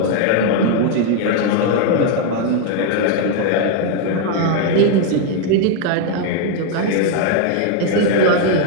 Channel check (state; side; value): different; both; correlation 0.00